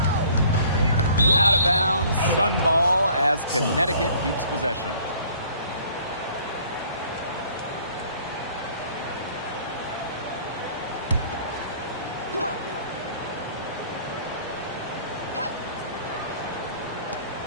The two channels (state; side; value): inverted; both; correlation -0.55